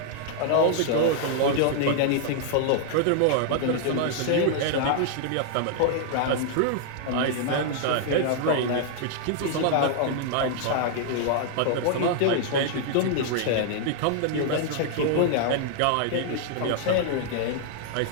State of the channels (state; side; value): different; both; correlation -0.01